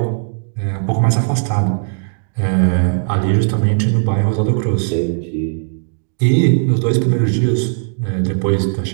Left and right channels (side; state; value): left; silent; digital silence